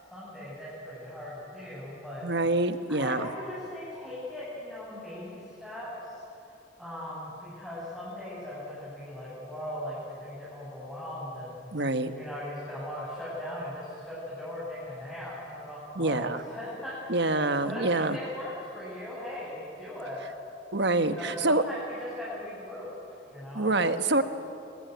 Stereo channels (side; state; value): both; normal; correlation -0.01